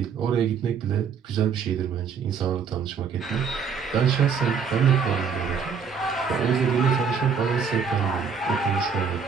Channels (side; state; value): left; quieter; 6.2 dB